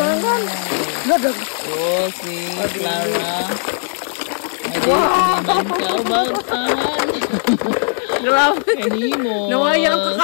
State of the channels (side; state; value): right; silent; 65 dB below the other